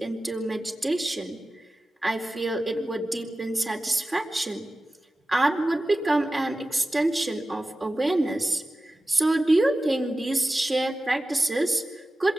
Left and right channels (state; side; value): normal; both; correlation 0.95